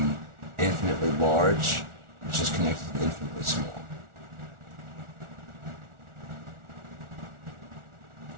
infinitely large, which is connected to the infinitely small.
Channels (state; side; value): late; left; 1.4 ms